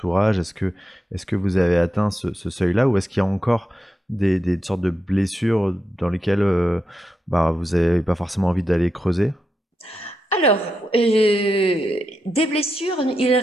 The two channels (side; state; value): both; normal; correlation 0.86